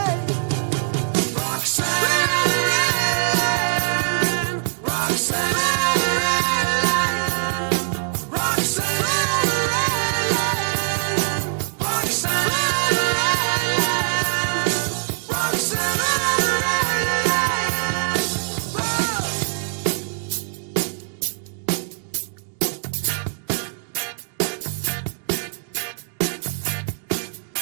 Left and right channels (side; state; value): left; silent; digital silence